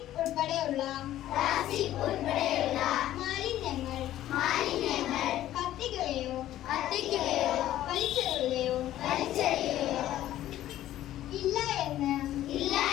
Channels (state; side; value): quieter; right; 13.3 dB